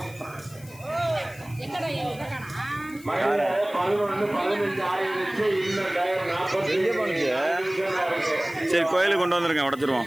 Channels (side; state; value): left; noise; hiss, 21 dB below the sound